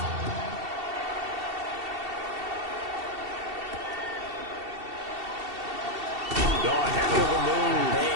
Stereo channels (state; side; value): late; left; 2.7 ms